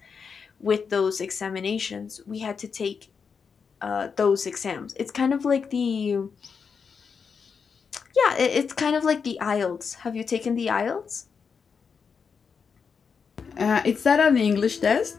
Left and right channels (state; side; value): quieter; right; 5.9 dB